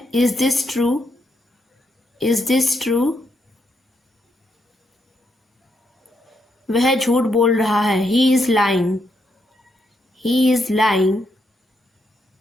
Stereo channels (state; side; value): normal; both; correlation 0.79